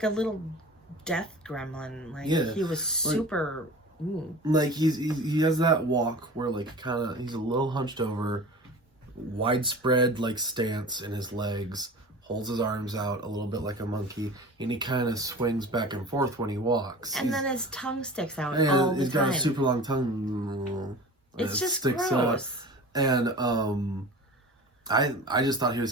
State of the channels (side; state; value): both; normal; correlation 0.37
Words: a little death gremlin. Like he was super. Like he has that walk where like kind of he's a little hunched over, widespread like stance in his legs, holds his arms out a little bit like a monkey, and he kind of swings back and forth when he walks. And then his tongue sticks out all the time. He's got a super long tongue. It's just sticks gross. Out. And I just thought he was